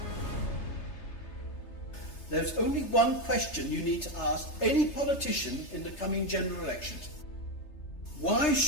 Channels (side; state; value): right; late; 3.3 ms